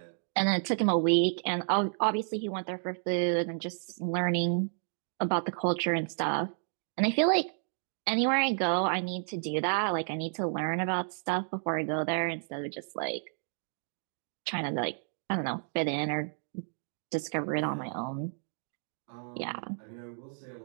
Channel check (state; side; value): silent; left; digital silence